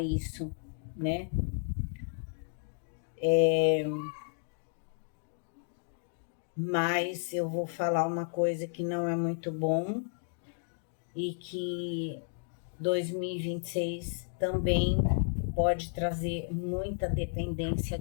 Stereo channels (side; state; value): right; silent; digital silence